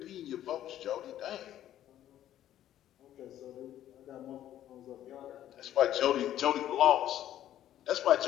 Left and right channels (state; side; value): quieter; right; 12.0 dB